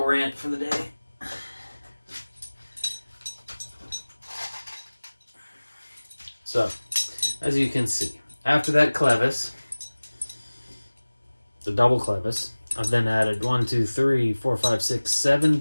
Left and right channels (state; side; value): inverted; both; correlation -1.00